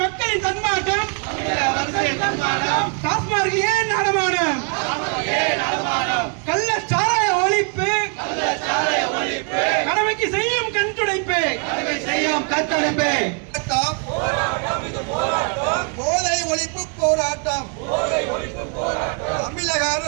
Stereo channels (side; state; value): left; quieter; 38.0 dB